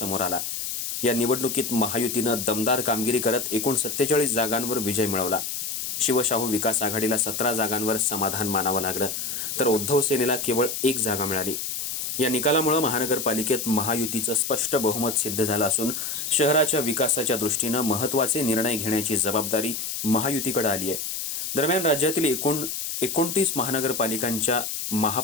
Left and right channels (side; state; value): left; noise; hiss, 4 dB below the sound